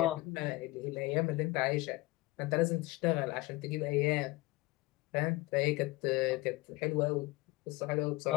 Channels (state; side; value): quieter; right; 20.7 dB